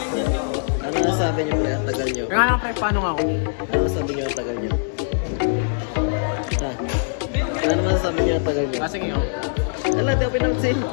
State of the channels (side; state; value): right; silent; digital silence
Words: Ano nasabi niyo pre? Ang tagal niyo. Kaya lang pre, paano nga ako? Ano nasabi niyo ang tagal niyo? Ha? Ano masasabi niyo ang tagal niyo? Kasi ngayon, Ala, di ako pinansin.